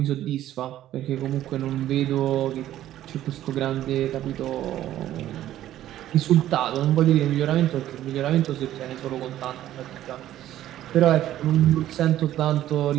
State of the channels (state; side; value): quieter; left; 12.9 dB